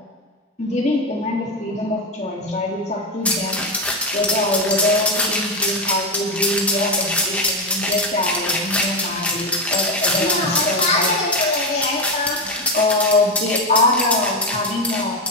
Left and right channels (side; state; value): both; normal; correlation 0.11